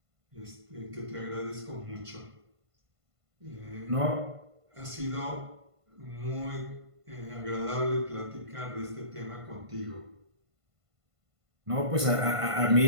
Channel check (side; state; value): left; late; 1.5 ms